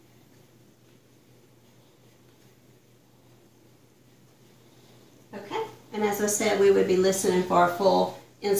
Okay, and as I said, we would be listening for a full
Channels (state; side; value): identical; both; correlation 1.00